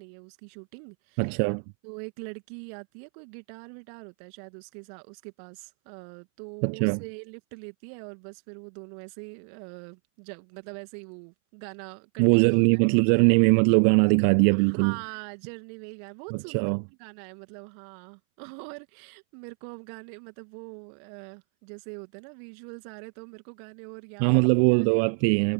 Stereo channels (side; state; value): left; silent; 60 dB below the other